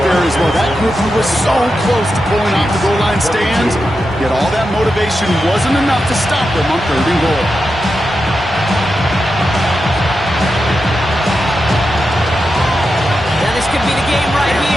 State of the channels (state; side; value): normal; both; correlation 0.89